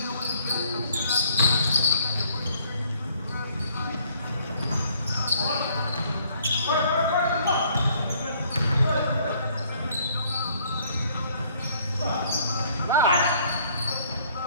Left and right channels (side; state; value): both; inverted; correlation -0.62